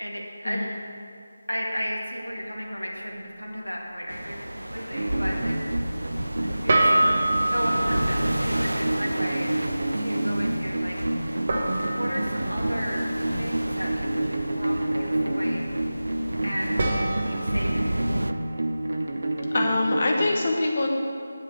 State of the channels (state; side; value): inverted; both; correlation -0.96